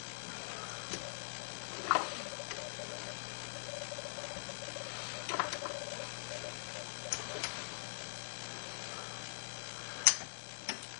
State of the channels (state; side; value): silent; right; digital silence